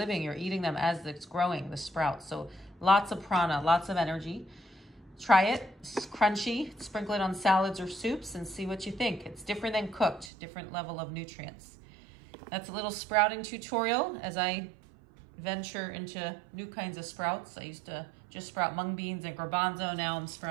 You're eating them as it's growing, the sprouts. So lots of prana, lots of energy. Try it, it's crunchy, sprinkle it on salads or soups and see what you think. It's different than cooked, different level of nutrients. That's a little sprouting tutorial as I venture into new kinds of sprouts. I used to just sprout mung beans and garbanzo. Now I'm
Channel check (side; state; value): left; drops out; at 10.3 s